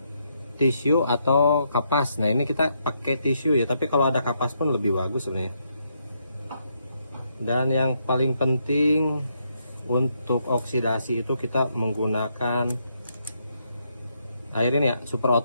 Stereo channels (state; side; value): inverted; both; correlation -0.77